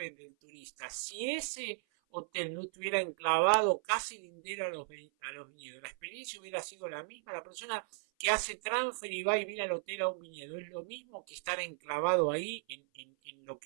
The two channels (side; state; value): left; silent; 53 dB below the other